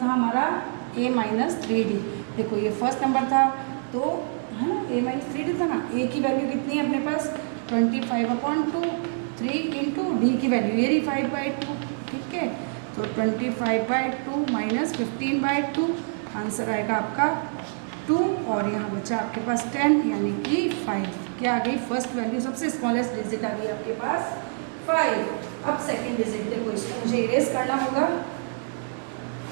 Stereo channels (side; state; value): left; silent; 61 dB below the other